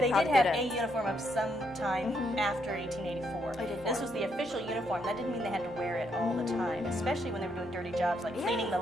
probably did have a didn't. uniform of some time after 1884. 1884. This was the official uniform. That didn't mean they had to wear it all the time, especially when they were doing dirty jobs like cleaning the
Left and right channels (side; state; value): both; normal; correlation 0.75